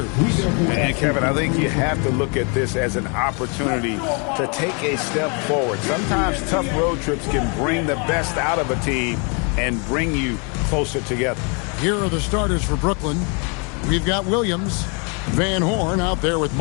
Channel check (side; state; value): right; quieter; 35.0 dB